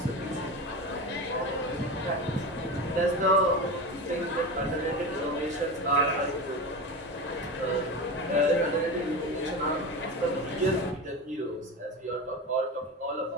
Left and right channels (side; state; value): both; normal; correlation 0.25